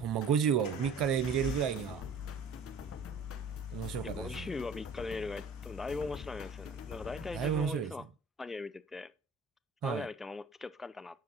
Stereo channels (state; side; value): quieter; left; 3.8 dB